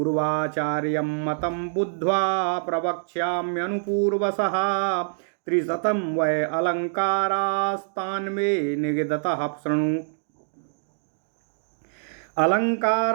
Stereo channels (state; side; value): silent; left; digital silence